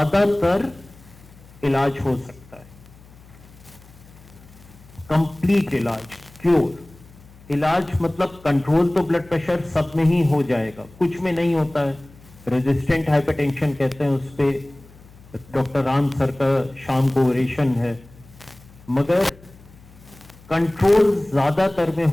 इलाज हो सकता है। कंप्लीट इलाज, क्योर। इलाज मतलब कंट्रोल तो ब्लड प्रेशर सब में ही हो जाएगा, कुछ में नहीं होता है। रेजिस्टेंट हाइपरटेंशन कहते हैं, उस पे डॉक्टर राम सर का शाम को ओरेशन है, मगर कंट्रोल ज्यादातर में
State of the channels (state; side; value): noise; left; hum, 23 dB below the sound